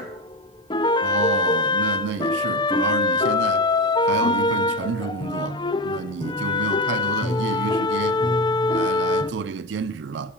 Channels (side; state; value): both; normal; correlation 0.20